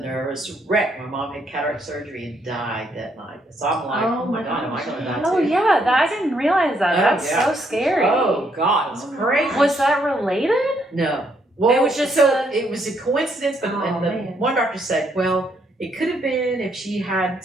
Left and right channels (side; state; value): both; normal; correlation 0.72